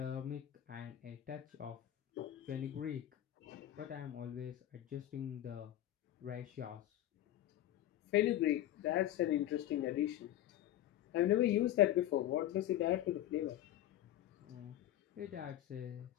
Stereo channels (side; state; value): right; quieter; 12.9 dB